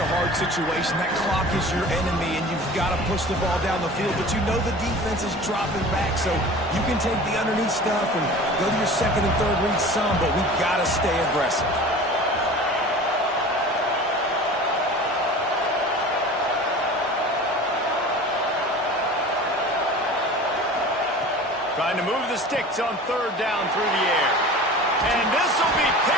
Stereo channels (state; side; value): normal; both; correlation 0.39